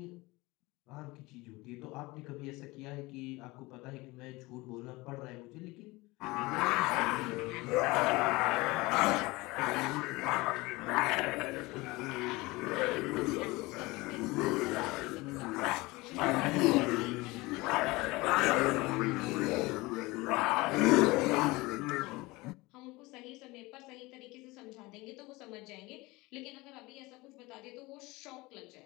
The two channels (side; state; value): right; quieter; 22.2 dB